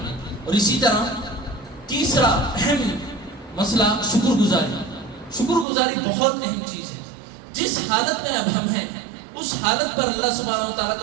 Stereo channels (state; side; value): drops out; left; at 5.7 s